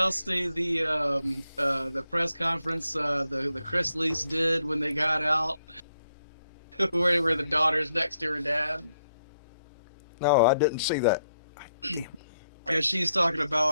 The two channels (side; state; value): both; inverted; correlation -0.78